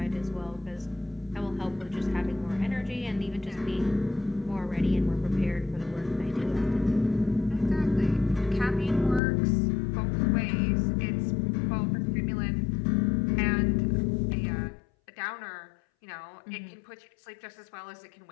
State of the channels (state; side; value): drops out; right; at 9.2 s